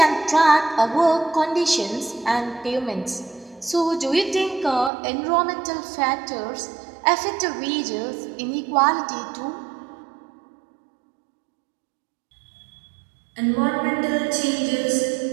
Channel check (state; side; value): drops out; left; at 4.9 s